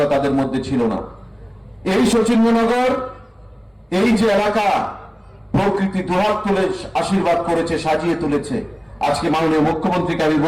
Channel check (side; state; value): both; identical; correlation 1.00